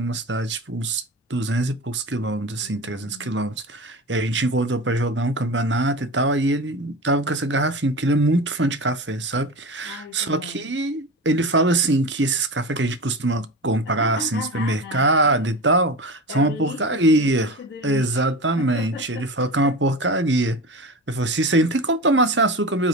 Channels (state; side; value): normal; both; correlation 0.28